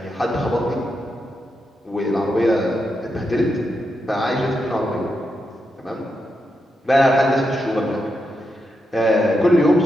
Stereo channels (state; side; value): normal; both; correlation 0.85